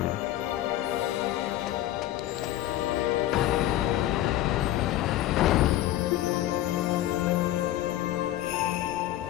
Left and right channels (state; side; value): quieter; right; 13.9 dB